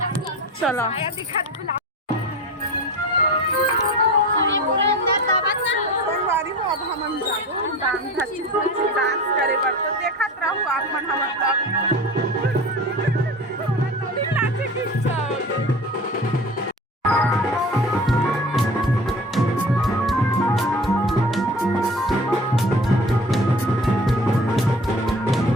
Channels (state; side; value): normal; both; correlation 0.37